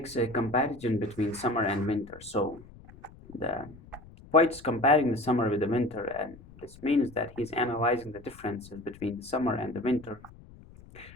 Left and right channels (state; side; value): noise; left; rumble, 21 dB below the sound